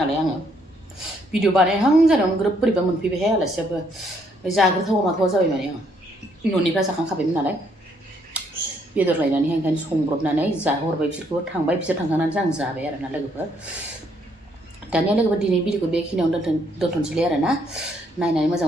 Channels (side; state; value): both; normal; correlation 0.70